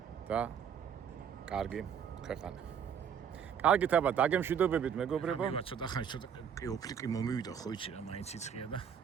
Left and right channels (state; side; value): quieter; left; 7.9 dB